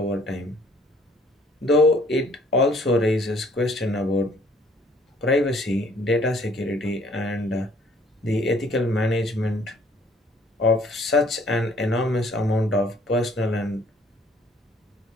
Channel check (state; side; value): normal; both; correlation 0.60